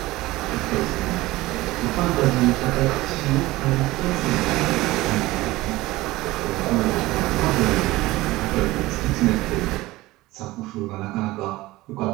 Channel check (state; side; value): quieter; left; 18.8 dB